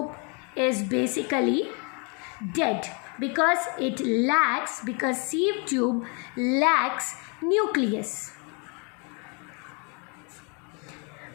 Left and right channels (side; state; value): right; quieter; 34.8 dB